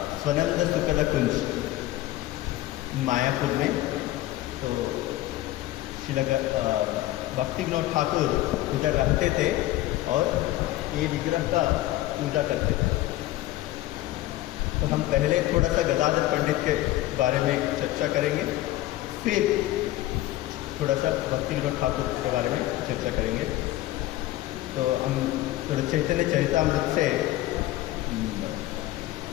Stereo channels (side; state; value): right; quieter; 15.9 dB